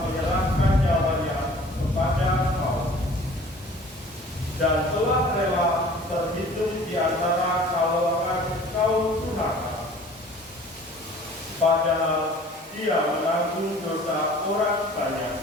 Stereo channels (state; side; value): normal; both; correlation 0.48